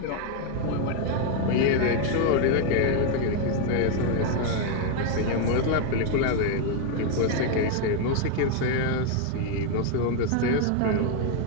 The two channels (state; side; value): different; both; correlation 0.01